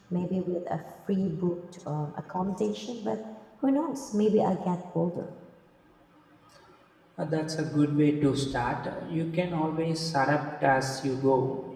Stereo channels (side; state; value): both; identical; correlation 1.00